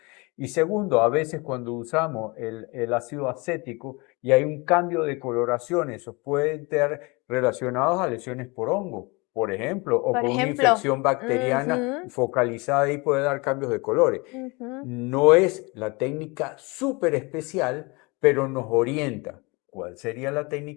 Y segundo, a veces cuando usamos el ácido acético, y hay un cambio de coloración. Esos pueden estar relacionados a lesiones por hongo, por ejemplo, o por por una ejemplo. infección bacteriana Ujú, focalizada y puede dar cambios de colores. ujú, No es la técnica súper especial, pero nos orienta. ¿cuál sería la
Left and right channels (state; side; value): quieter; right; 27.2 dB